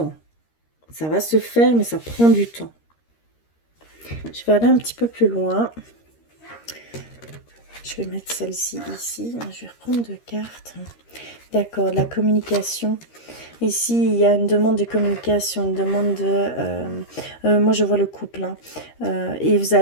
Ça va se faire, mais ça prend du temps. Je vais aller un petit peu plus loin. Je vais mettre celle-ci ici. Je vais reprendre deux cartes. D'accord, la communication. Ici, il y a une demande de communication, une demande de... moi, je vois le couple. Hein. Et vous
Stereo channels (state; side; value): late; right; 13 ms